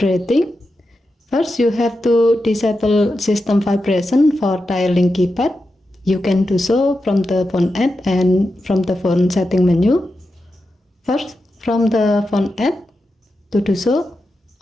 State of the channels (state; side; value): normal; both; correlation 0.89